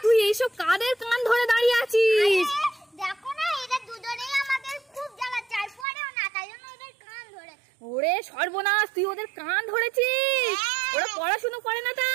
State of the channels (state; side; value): drops out; left; at 5.9 s